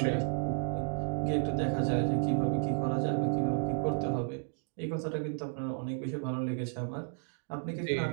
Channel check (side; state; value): left; silent; 56 dB below the other